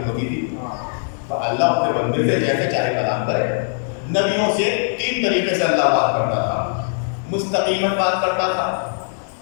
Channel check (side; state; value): right; silent; digital silence